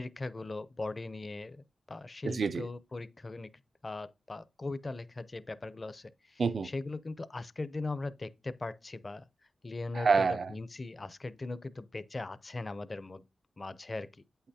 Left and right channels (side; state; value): both; normal; correlation 0.91